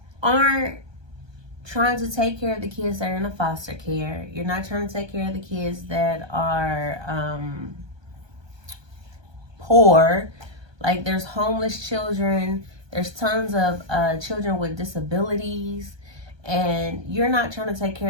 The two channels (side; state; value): left; late; 1.2 ms